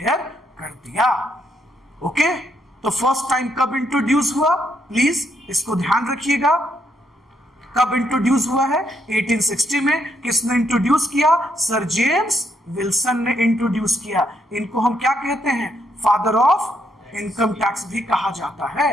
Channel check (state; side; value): normal; both; correlation 0.75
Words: कर दिया। ओके, तो फर्स्ट टाइम कब इंट्रोड्यूस हुआ, प्लीज इसको ध्यान रखिएगा। कब इंट्रोड्यूस हुआ है? 1860 में। किसने इंट्रोड्यूस किया? सर जेम्स विल्सन ने इंट्रोड्यूस किया। इनको हम क्या कहते हैं? फादर ऑफ इनकम टैक्स भी कहा जाता